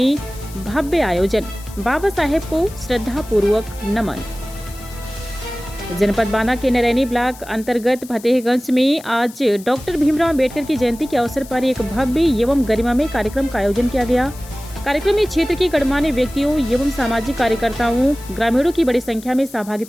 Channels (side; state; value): left; noise; hiss, 19 dB below the sound